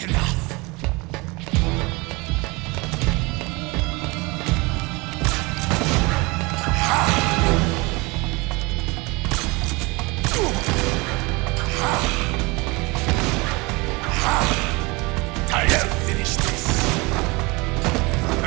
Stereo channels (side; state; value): left; quieter; 25.5 dB